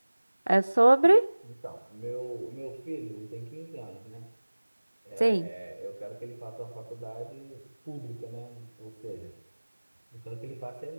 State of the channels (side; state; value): both; inverted; correlation -1.00